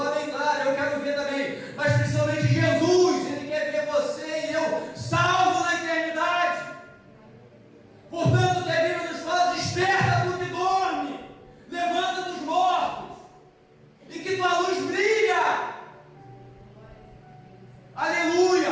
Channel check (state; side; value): identical; both; correlation 1.00